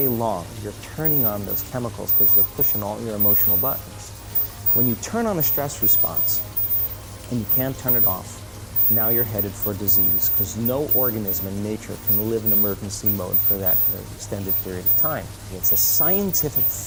long you're turning on those chemicals because they're pushing all your emotional buttons. When you turn on a stress response and you can't turn it off, now you're headed for disease, because no organism in nature can live in emergency mode for that extended period of time. It's a scientific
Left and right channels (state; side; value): identical; both; correlation 1.00